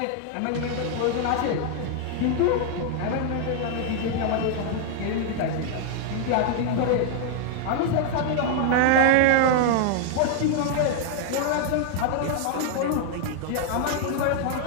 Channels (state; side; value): different; both; correlation 0.00